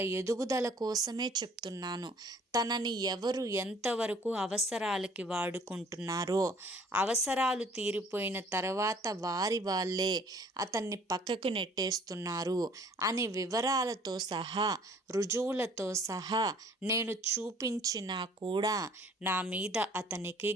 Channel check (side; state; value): both; normal; correlation 0.55